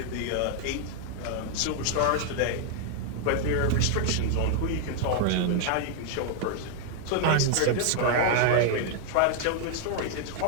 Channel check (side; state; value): both; different; correlation 0.00